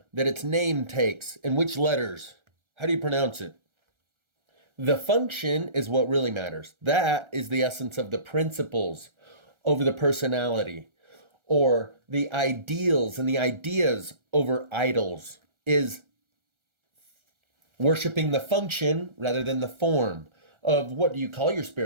that its name takes, and which letters. How do you pronounce it? The function is what really matters. That is the essence of the principles over the personality, or the ideals and the ideas over idols, is worshiping the function rather than the form of what do you call your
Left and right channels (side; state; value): left; late; 1.3 ms